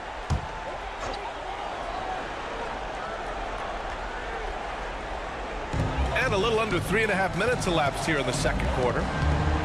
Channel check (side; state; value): both; identical; correlation 1.00